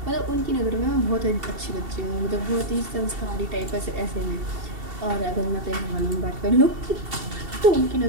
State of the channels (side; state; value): left; late; 2.7 ms